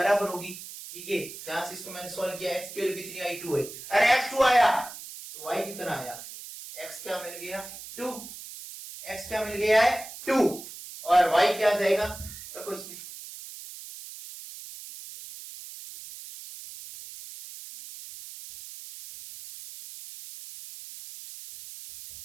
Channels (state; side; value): noise; right; hiss, 13 dB below the sound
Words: होगी। ठीक है, यहां से इसको मैंने सॉल्व किया, x की वैल्यू कितनी आई, 2 है। अरे x 2 आया तो y कितना आया, x क्या मिल गया, 2। x क्या मिल गया है, 2, और y क्या आ जाएगा, रखो इसमें।